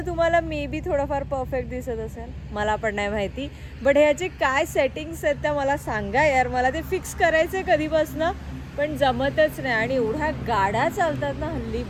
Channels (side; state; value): both; identical; correlation 1.00